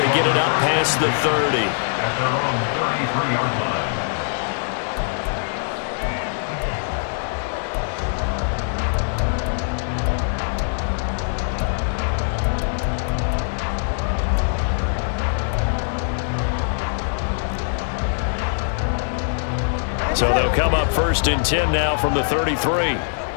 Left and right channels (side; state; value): right; silent; digital silence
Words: get it up past the 30. At their own 33-yard line. So they'll come up 1st and 10 now from the 33.